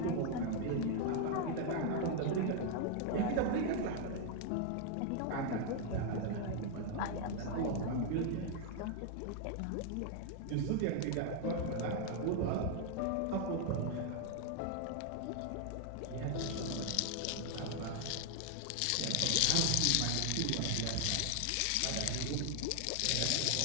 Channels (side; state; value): both; different; correlation 0.00